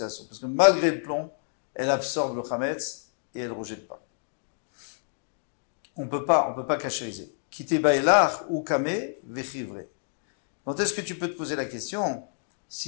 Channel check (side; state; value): right; silent; digital silence